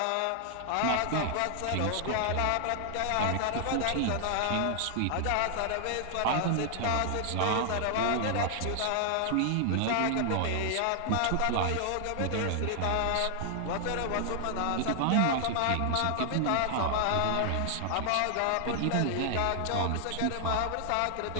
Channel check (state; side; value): different; both; correlation 0.00